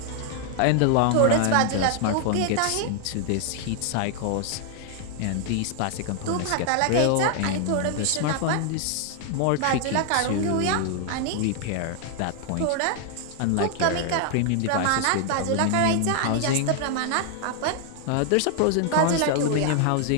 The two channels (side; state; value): both; different; correlation 0.00